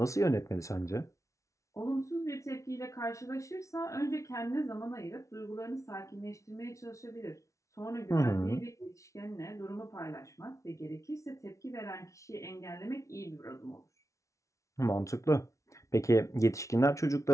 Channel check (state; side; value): late; right; 0.15 ms